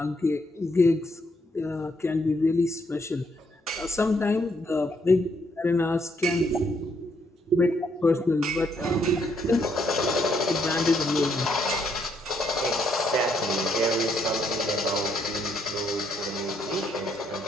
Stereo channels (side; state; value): both; normal; correlation 0.73